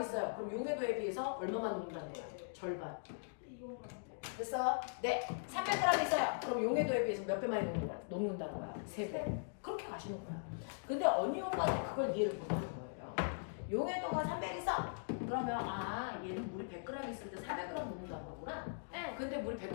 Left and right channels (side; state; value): right; silent; digital silence